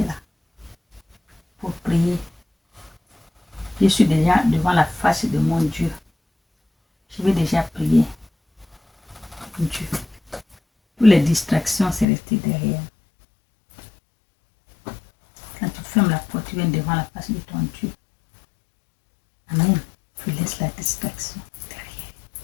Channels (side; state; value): right; drops out; at 12.1 s